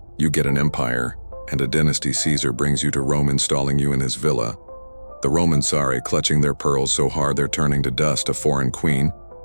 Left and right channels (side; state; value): both; inverted; correlation -1.00